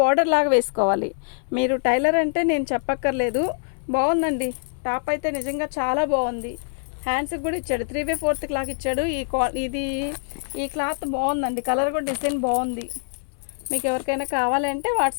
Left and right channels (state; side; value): silent; right; digital silence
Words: బార్డర్ లాగా వేసుకోవాలి. మీరు టైలర్ అంటే నేను చెప్పక్కర్లేదు. బాగుందండి టాప్ అయితే, నిజంగా చాలా బాగుంది. హ్యాండ్స్కి కూడా ఇచ్చాడు. 3/4 క్లాత్ ఇచ్చాడు. ఈ క్లాత్ బాగుందండి. కలర్ కూడా డిజైన్ బాగుంది. మీకు ఎవరికైనా కావాలంటే